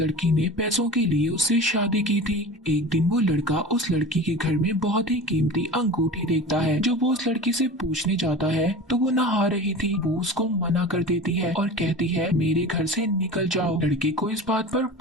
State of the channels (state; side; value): normal; both; correlation 0.34